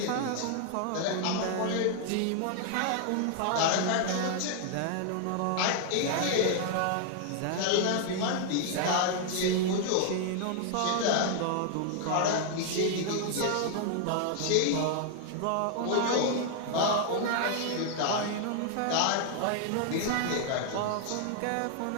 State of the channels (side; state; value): both; different; correlation 0.00